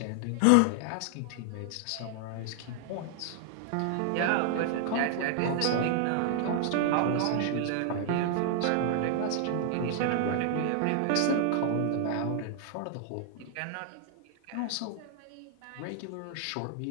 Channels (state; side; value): different; both; correlation 0.00